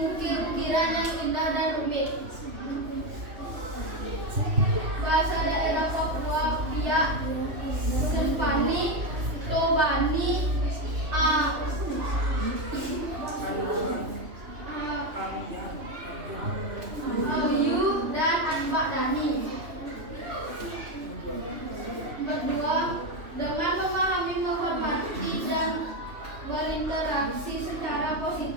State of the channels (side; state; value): left; late; 3.0 ms